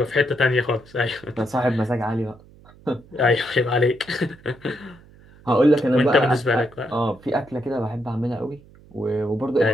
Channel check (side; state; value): right; noise; hum, 25 dB below the sound